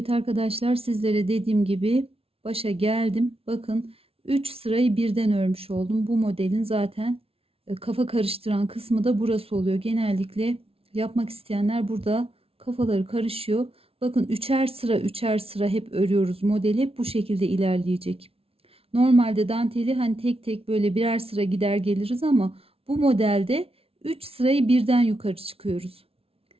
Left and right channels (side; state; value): left; late; 0.28 ms